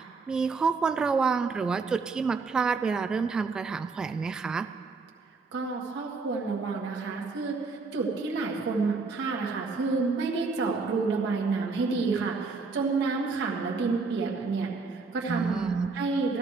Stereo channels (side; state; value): left; quieter; 4.3 dB